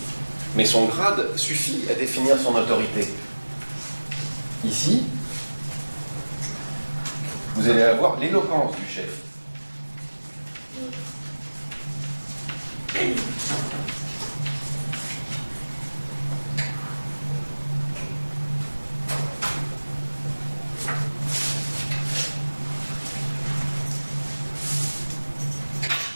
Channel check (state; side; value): inverted; both; correlation -1.00